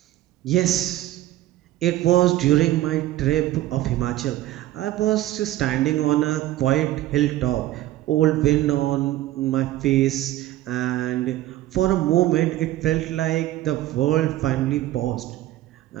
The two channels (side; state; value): left; quieter; 14.8 dB